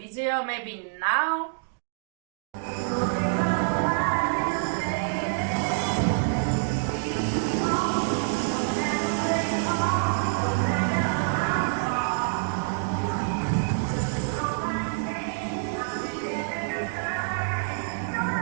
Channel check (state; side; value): silent; left; digital silence